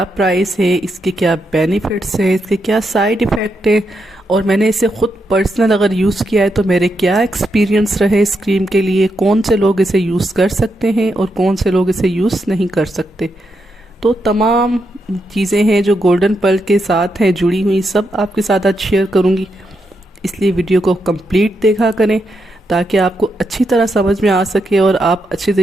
प्राइस है, इसके क्या बेनिफिट्स हैं, इसके क्या साइड इफ़ेक्ट है, और मैंने इसे ख़ुद पर्सनल अगर यूज़ किया है तो मेरे क्या एक्सपीरियंस रहे इस क्रीम के लिए, कौन से लोग इसे यूज़ कर सकते हैं और कौन से लोग इसे यूज़ नहीं कर सकते। तो तमाम चीज़ें हैं जो गोल्डन पर्ल के साथ हैं जुड़ी हुई, सब आपके साथ आज शेयर करूंगी। इसलिए वीडियो को कंप्लीट देखा करें ताकि आपको अच्छी तरह समझ में आ सके और आप अच्छी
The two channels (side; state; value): both; normal; correlation 0.83